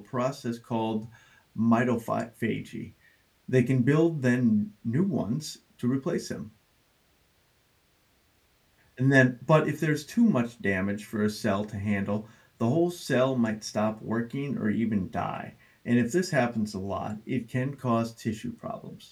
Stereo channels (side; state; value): both; identical; correlation 1.00